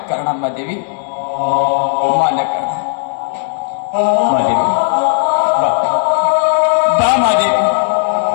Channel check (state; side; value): silent; right; digital silence